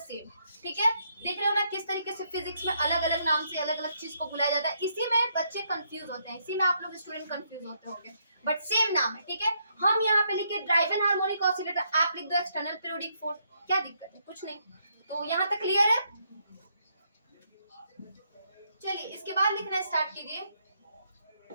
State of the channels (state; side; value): inverted; both; correlation -0.75